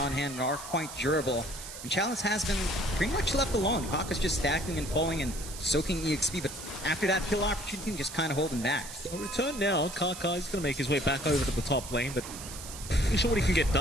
hand and are quite durable. And Chalice has been pretty much left alone. Kaka's just stacking and falling and soaking EXP, but after that kill opportunity, just kind of holding back. A return now. Kaka is going to make his way back over to the top lane, but not sure what he can get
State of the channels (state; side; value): noise; right; hiss, 11 dB below the sound